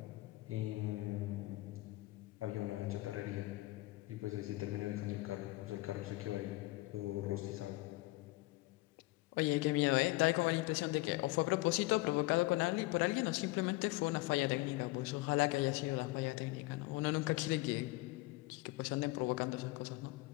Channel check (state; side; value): quieter; right; 20.9 dB